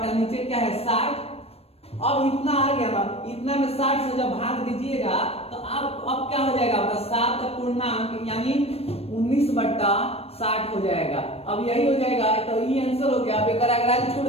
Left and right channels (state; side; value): late; right; 0.29 ms